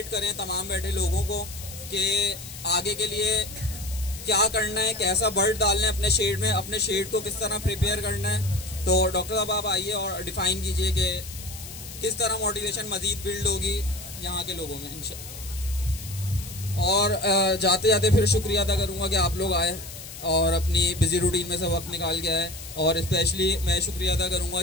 करें तमाम बैठे लोगों को कि आगे के लिए क्या करना है, कैसा बर्ड डालना है अपने शेड में, अपने शेड को किस तरह प्रिपेयर करना है। तो डॉक्टर साहब आप आइए और डिफाइन कीजिए कि किस तरह मोटिवेशन मजीद बिल्ड होगी यहाँ के लोगों में इंशाल्लाह। और जाते जाते फिर शुक्रिया अदा करूँगा कि आप लोग आए और अपनी बिजी रूटीन में से वक्त निकाल के आए, और स्पेशली मैं शुक्रिया अदा करूँगा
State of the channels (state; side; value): noise; left; hiss, 13 dB below the sound